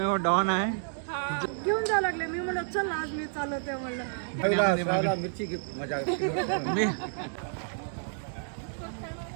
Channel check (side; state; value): left; silent; digital silence